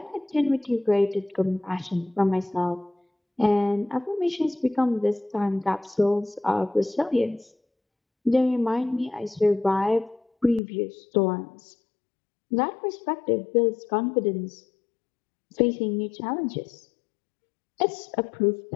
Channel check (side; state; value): right; drops out; at 10.6 s